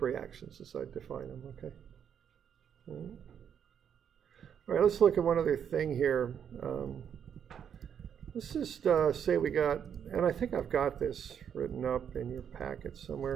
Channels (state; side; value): quieter; left; 8.3 dB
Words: reactions as I define them, okay? All right, let's look at one other thing here. Let's just say we got, and I think I've got this written up in your packet